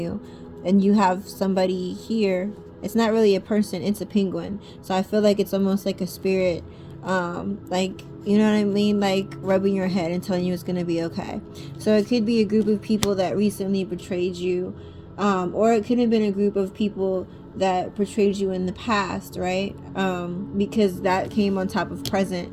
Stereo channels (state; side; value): identical; both; correlation 1.00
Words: And you have somebody here. It's not really a person, it's a penguin. So I feel like it's almost like a spirit, like, you know what I mean? Like rubbing your head and telling you it's going to be okay. So it could be a group of people that recently betrayed you, or it could have been a group of people that betrayed you in the past, right? Because that came on top of present.